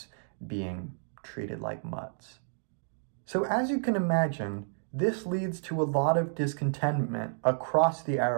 being treated like mutts. So as you can imagine, this leads to a lot of discontentment across the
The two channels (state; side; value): silent; left; digital silence